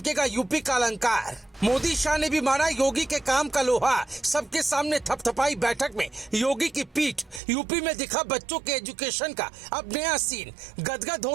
यूपी का अलंकार। मोदी शाह ने भी मारा योगी के काम का लोहा। सबके सामने थपथपाई बैठक में योगी की पीठ। यूपी में दिखा बच्चों के एजुकेशन का अब नया सीन। गदगद हो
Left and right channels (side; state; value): left; drops out; at 7.4 s